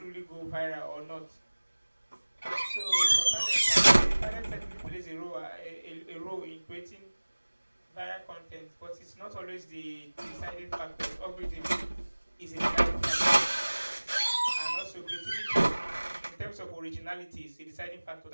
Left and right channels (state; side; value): inverted; both; correlation -1.00